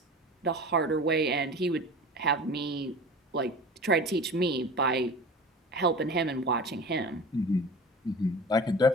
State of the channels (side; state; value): both; normal; correlation 0.37